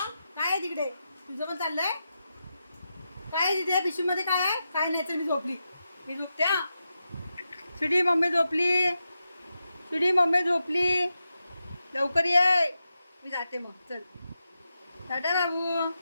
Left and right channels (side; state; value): both; inverted; correlation -0.88